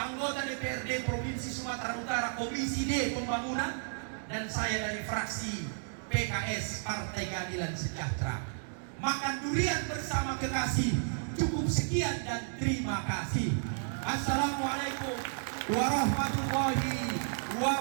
DPRD Provinsi Sumatera Utara Komisi D Pembangunan, dan saya dari fraksi PKS Partai Keadilan Sejahtera. Makan durian bersama kekasih. Cukup sekian dan terima kasih. Assalamualaikum warahmatullahi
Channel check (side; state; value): left; silent; digital silence